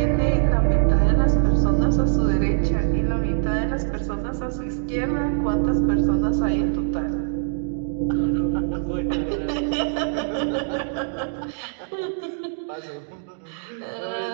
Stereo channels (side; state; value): left; silent; digital silence